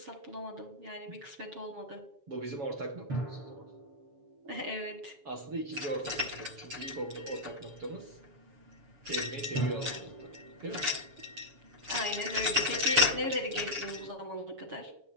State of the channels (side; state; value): left; late; 7.2 ms